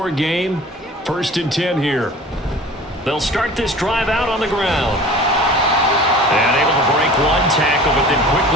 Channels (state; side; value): normal; both; correlation 0.42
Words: game. 1st and 10 here. They'll start this drive out on the ground. And able to break one tackle, but then